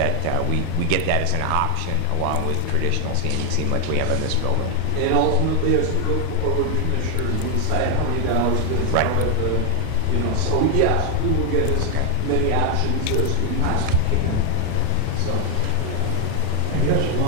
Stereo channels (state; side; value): different; both; correlation 0.00